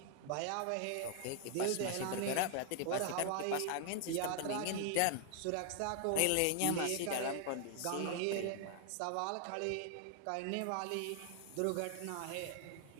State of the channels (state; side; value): different; both; correlation 0.00